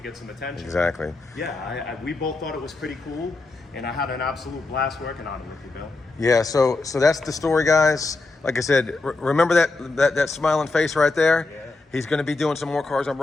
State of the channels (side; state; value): right; quieter; 3.4 dB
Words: get some attention. Exactly. Yeah, we both thought it was pretty cool, and I had an absolute blast working on it with you, Bill. Yeah, so that's the story, guys. Like I said, remember that smiling face right there? Yeah. He's going to be doing some more cars on